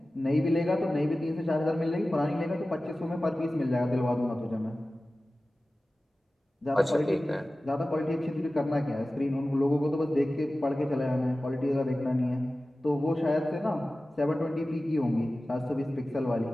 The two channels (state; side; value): normal; both; correlation 0.96